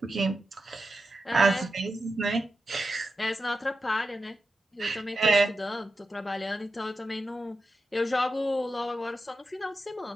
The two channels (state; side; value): normal; both; correlation 0.89